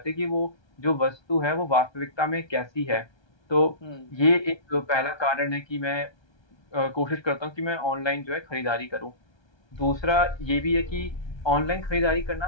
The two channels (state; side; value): late; right; 1.3 ms